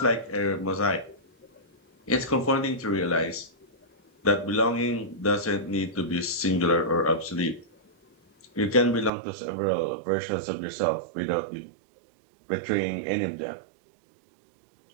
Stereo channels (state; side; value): drops out; left; at 9.1 s